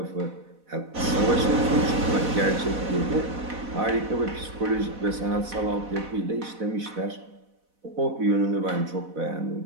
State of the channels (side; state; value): left; late; 4.1 ms